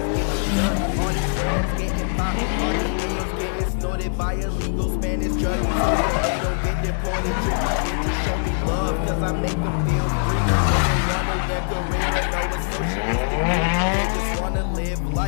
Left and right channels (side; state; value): right; silent; digital silence